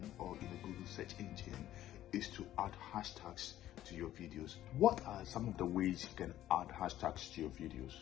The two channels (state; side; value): quieter; right; 13.0 dB